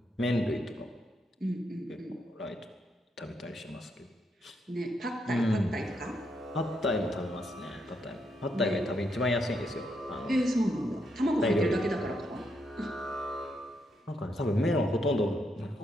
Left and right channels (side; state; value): both; normal; correlation 0.79